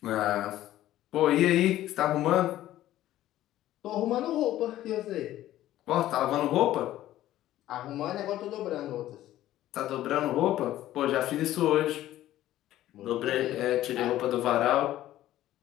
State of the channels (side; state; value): right; quieter; 13.9 dB